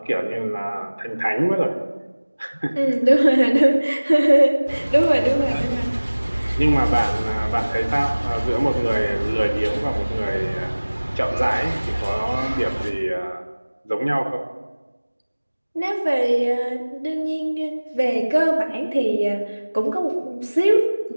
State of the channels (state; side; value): inverted; both; correlation -1.00